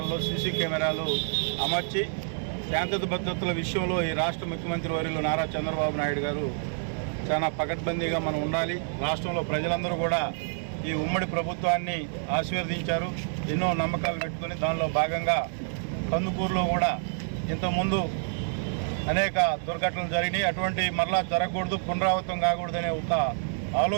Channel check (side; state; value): left; silent; 59 dB below the other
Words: సీసీ కెమెరాలు అమర్చి శాంతి భద్రతల విషయంలో ఈ రాష్ట్ర ముఖ్యమంత్రి వర్యులు నారా చంద్రబాబు నాయుడు గారు చాలా పకడ్బందీగా మనం ఉండాలి. రాష్ట్రంలో ప్రజలందరూ కూడా ఈ ఉమ్మడి ప్రభుత్వాన్ని ఆశీర్వదించారు. ఎన్నో నమ్మకాలు పెట్టుకుని దానిలో భాగంగా కందుకూరులో కూడా ఇంతకుముందు అనేక దుర్ఘటనలు జరిగినాయి. అటువంటి మరలా జరగకూడదు, పునరావృతం కాకూడదనే ఒక